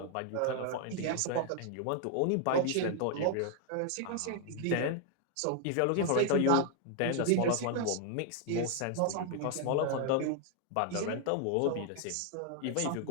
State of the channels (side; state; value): both; different; correlation 0.00